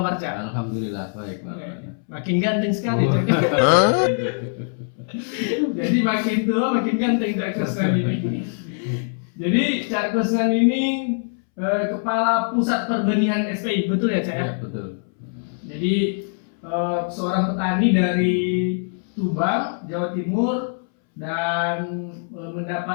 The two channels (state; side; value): silent; right; 63 dB below the other